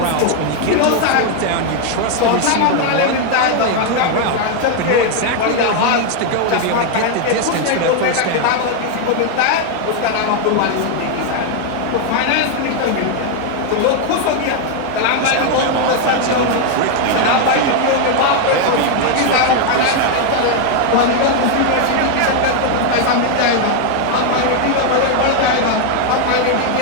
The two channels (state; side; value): different; both; correlation 0.01